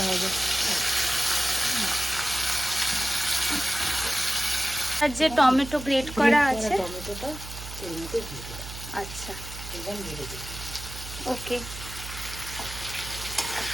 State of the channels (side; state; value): right; noise; hum, 11 dB below the sound